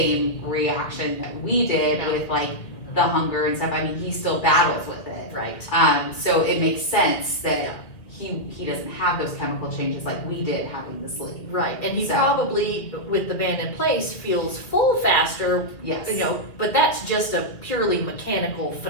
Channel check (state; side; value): late; right; 2.2 ms